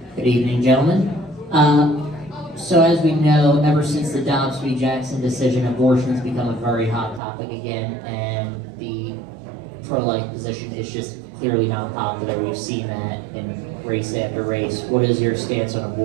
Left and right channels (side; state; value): left; drops out; at 7.2 s